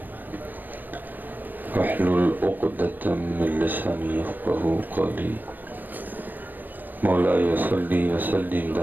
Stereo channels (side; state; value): left; late; 0.090 ms